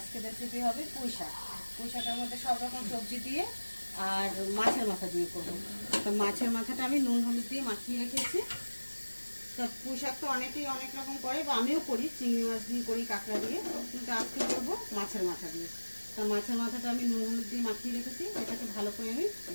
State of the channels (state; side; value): inverted; both; correlation -1.00